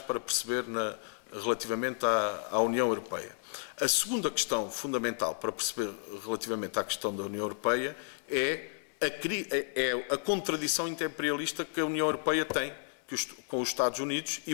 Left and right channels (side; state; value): right; silent; 56 dB below the other